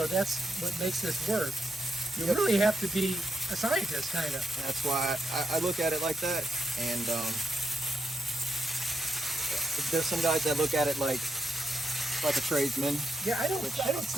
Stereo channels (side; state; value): both; normal; correlation 0.83